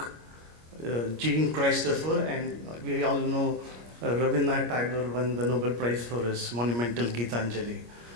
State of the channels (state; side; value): late; left; 25 ms